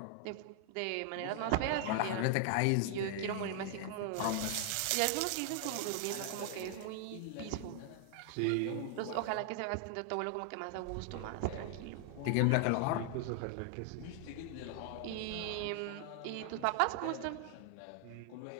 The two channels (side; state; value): both; different; correlation 0.00